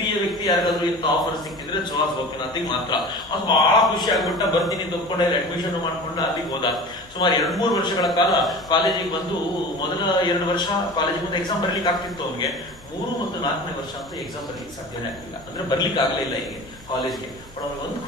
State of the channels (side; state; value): both; normal; correlation 0.37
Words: ವ್ಯಕ್ತಿ ಯಾರಿಗಾದ್ರೂ ಇಂಥ ಆಫರ್ ಸಿಕ್ಕಿದ್ರೆ ಸುಹಾಸ್ ಗೋಪಿನಾಥಿಗೆ ಮಾತ್ರ. ಅವ್ನು ಬಹಳ ಖುಷಿ ಆಗ್ಬಿಟ್ಟ. ಬರ್ತೀನಿ ತಗೊಂಡೆ, ಅಡ್ಮಿಷನ್ ಮಾಡ್ಕೊಂಡು ಅಲ್ಲಿಗೆ ಹೋದ. ಸುಮಾರು 2-3 ವರ್ಷಗಳ ಕಾಲ ಕಾಲೇಜಿಗೆ ಬಂದು, ಮೊದಲ 2 ವರ್ಷ ಕಾಲೇಜಿಗೆ ಬಂದು ಎಕ್ಸಾಮ್ ಬರ್ಲಿಕ್ಕೆ ಆಗ್ತಿತ್ತು ಅವನಿಗೆ. 3 ಮತ್ತು 4ನೇ ವರ್ಷ ಅಂತ ಎಕ್ಸಾಮ್ ಬರ್ಲಿಕ್ಕೆ ಸಾಧ್ಯನೇ ಆಗ್ಲಿಲ್ಲ. ಅಂದ್ರೆ ಬರ್ಲಿಕ್ಕೆ ಆಗ್ಲೇ ಇಲ್ಲ ಹೀಗೆ ಕಾಲೇಜ್ಗೆ. ಬಟ್ ಅವ್ನಿಗೆ ಒಂದು